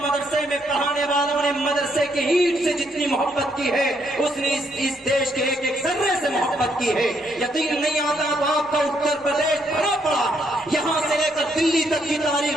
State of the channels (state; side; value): normal; both; correlation 0.73